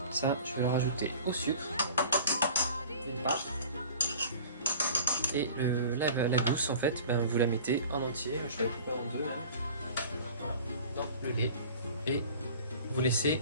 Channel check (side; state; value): both; inverted; correlation -0.43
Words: ça je vais le rajouter au sucre, une part. Et la gousse en fait, vous la mettez en entier, je vais la couper en deux même. Voilà, dans le lait et vous laissez